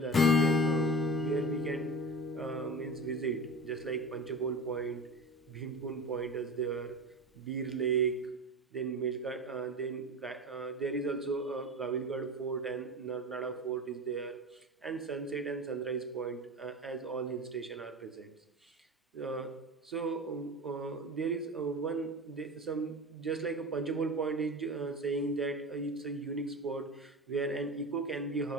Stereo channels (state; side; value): normal; both; correlation 0.31